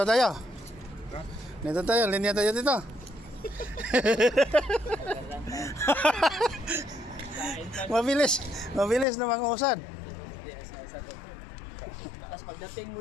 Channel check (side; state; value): right; drops out; at 9.1 s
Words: Dito tayo, linya tayo dito. Mabilis na mangusad. Tapos pagdating